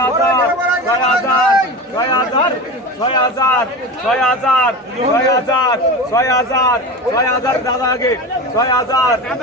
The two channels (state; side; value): normal; both; correlation 0.27